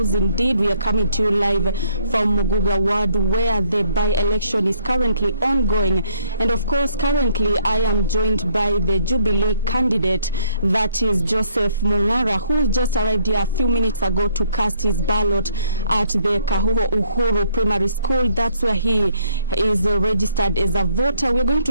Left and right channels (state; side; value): inverted; both; correlation -0.66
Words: Indeed, we are coming to you live from Muguga Ward, where the by-election is currently ongoing. And of course, currently I am joined by the Jubilee candidate, that is Joseph Mungara, who just arrived here a few minutes ago to cast his ballot at the Kahuho Uhuru Primary School. That's where he is registered as a voter. We're going